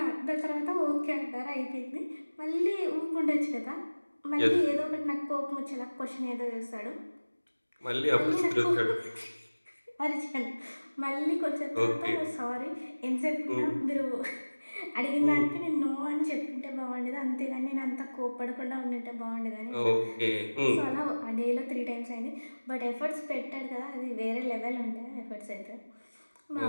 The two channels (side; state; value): both; inverted; correlation -1.00